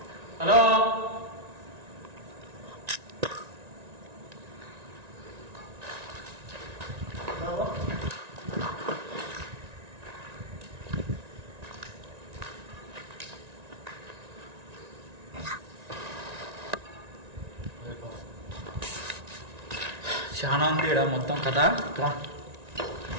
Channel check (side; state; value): left; late; 1.9 ms